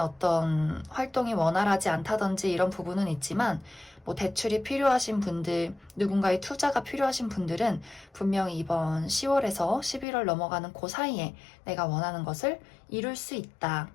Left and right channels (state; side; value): drops out; right; at 10.1 s